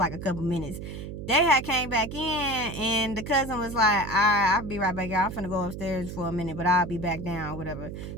a couple minutes. They had came back in, and the cousin was like, all right, I'll be right back, y'all. I'm finna go upstairs for a minute, but I'll be back down or whatever.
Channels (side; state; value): right; noise; hum, 8 dB below the sound